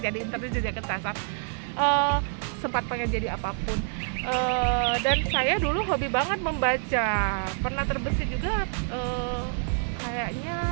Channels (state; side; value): silent; left; 60 dB below the other